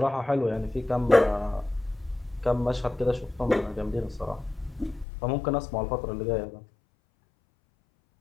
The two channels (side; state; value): right; drops out; at 5.1 s